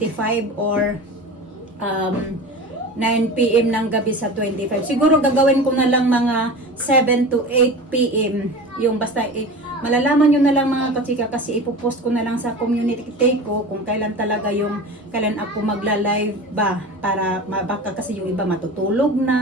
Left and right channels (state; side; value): normal; both; correlation 0.32